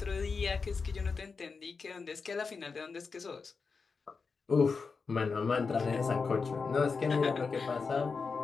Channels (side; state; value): right; quieter; 4.9 dB